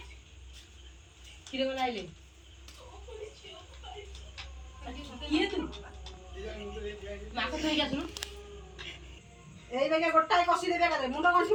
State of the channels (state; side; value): identical; both; correlation 1.00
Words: किरे को लाइले किए तू माको थई जा सुनु एई बेगे गोटाई कसी देबे का मुंड गंठी